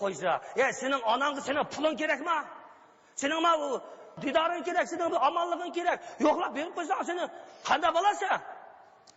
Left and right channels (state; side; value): identical; both; correlation 1.00